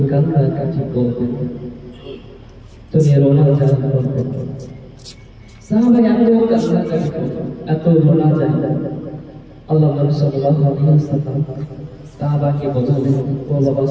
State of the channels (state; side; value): identical; both; correlation 1.00